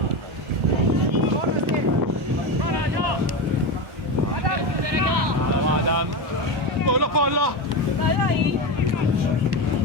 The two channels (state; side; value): late; left; 1.1 ms